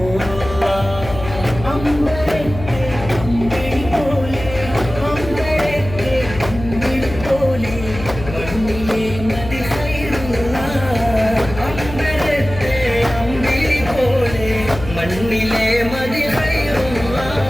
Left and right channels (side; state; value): left; noise; hum, 10 dB below the sound